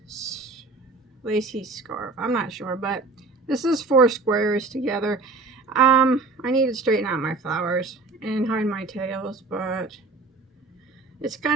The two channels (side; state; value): left; quieter; 3.6 dB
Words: lacy scarf. I'm not sure, but this is 4 squares together. I need to straighten out my flowers and hide my tails, but it's